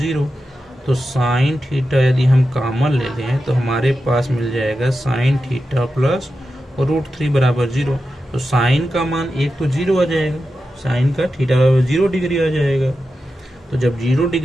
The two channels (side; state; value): both; normal; correlation 0.91